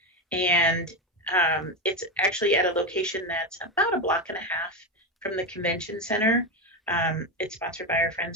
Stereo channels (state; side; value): normal; both; correlation 0.14